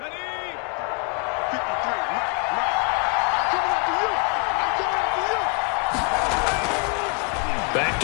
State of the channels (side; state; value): right; quieter; 33.6 dB